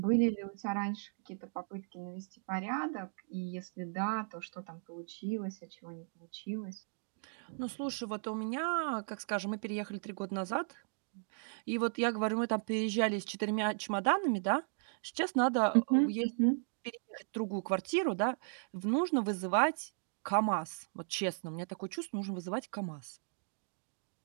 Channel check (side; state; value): left; silent; digital silence